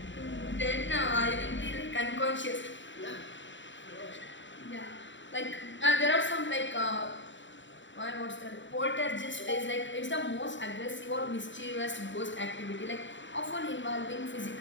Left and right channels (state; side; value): late; right; 0.54 ms